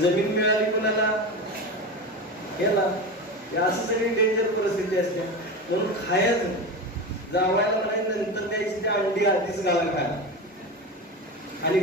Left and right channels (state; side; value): normal; both; correlation 0.23